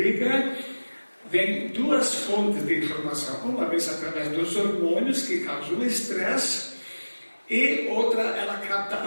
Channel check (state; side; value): inverted; both; correlation -1.00